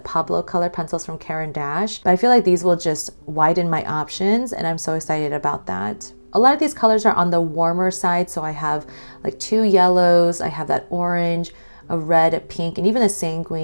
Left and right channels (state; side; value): inverted; both; correlation -1.00